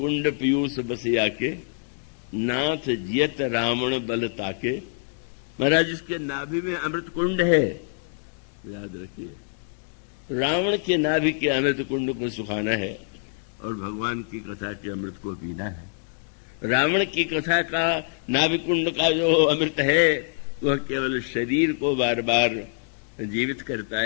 पीयूष बसिया के, नाथ जियत रावण बल ताके। महाराज, इसके नाभि में अमृत कुंड है याद रखिए। रावण के नाभि के अमृत कुंड को सुखाना है और भगवान की कथा के अमृत को पीना है। रावण की कथा का नाभि कुंड का जो अमृत है वह केवल शरीर को बार बार जीवित करता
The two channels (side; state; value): right; silent; digital silence